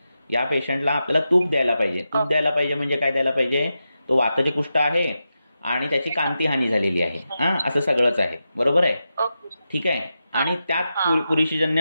या पेशंटला आपल्याला तूप द्यायला पाहिजे. तूप द्यायला पाहिजे म्हणजे काय द्यायला पाहिजे? तो वाताचे कुष्ठ आहे आणि त्याची कांती हानी झालेली आहे. असं सगळंच आहे. बरोबर आहे. ठीक आहे. आणि त्यात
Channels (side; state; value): both; inverted; correlation -0.89